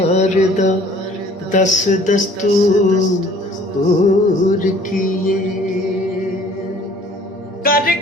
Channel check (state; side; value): normal; both; correlation 0.54